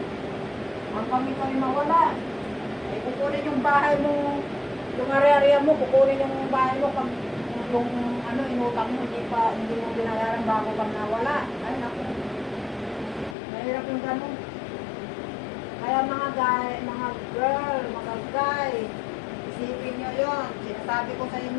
Hanggang ito ay mawala. Ay, kukunin yung bahay mo, yung area mo, kukunin yung bahay mo pag yung inutang mo, hindi mo binayaran bago pag nawala. Ay, naku. Mahirap yung ganun. Kaya mga girl, mga guy, isipin nyo yun. Sinasabi ko sa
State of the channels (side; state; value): right; drops out; at 13.4 s